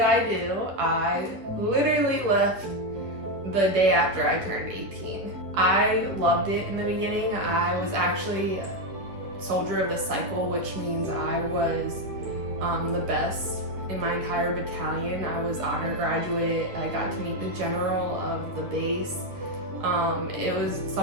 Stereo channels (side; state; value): left; late; 9.9 ms